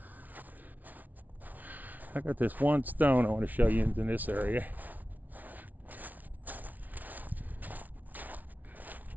I got this one stone I want to show you in this area.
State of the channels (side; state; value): left; late; 0.077 ms